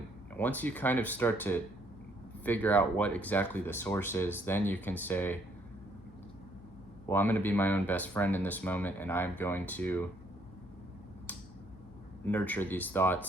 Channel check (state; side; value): noise; left; hum, 20 dB below the sound